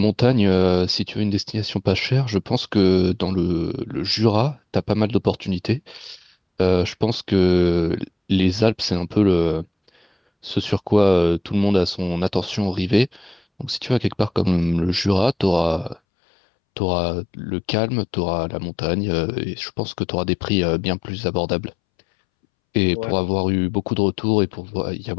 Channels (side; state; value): right; drops out; at 16.0 s